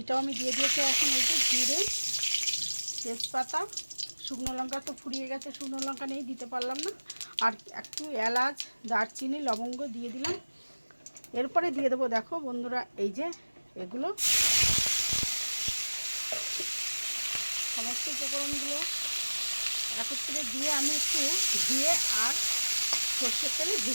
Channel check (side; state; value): both; inverted; correlation -1.00